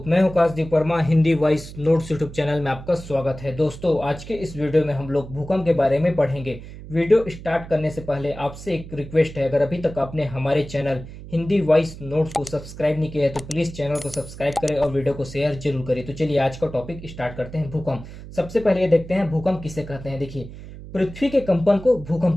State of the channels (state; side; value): noise; right; hum, 14 dB below the sound